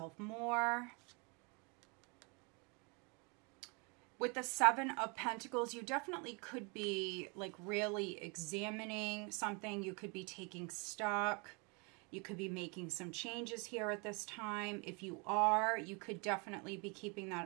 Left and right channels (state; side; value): quieter; left; 31.9 dB